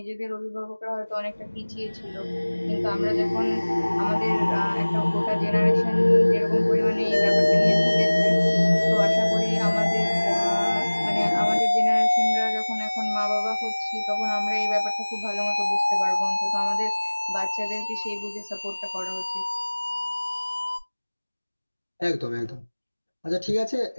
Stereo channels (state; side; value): inverted; both; correlation -1.00